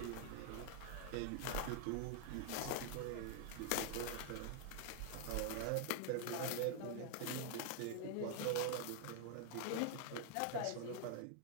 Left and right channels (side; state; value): both; different; correlation 0.00